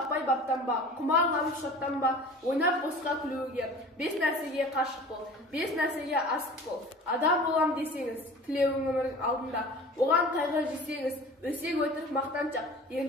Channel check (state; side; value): normal; both; correlation 0.41